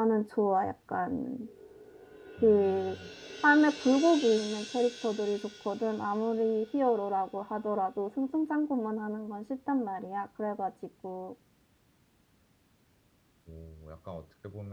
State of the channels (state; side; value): identical; both; correlation 1.00